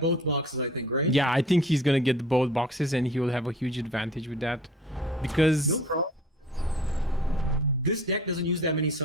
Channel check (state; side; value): normal; both; correlation 0.47